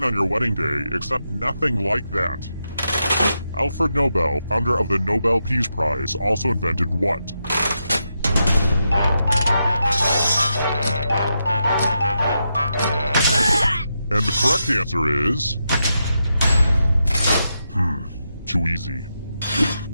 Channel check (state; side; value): inverted; both; correlation -0.85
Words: on your wedding day, except nothing like that. Alfred Nobel, founder of the Nobel Peace Prize, also invented what? And the correct answer is... too easy.